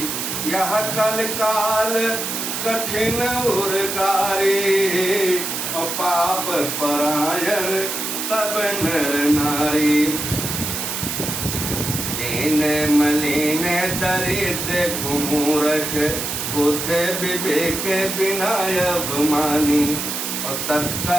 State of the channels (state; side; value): noise; right; hiss, 3 dB below the sound